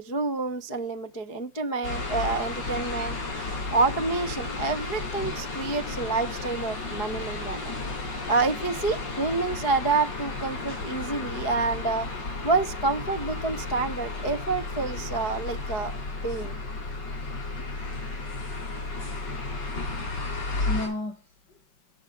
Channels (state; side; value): late; right; 4.8 ms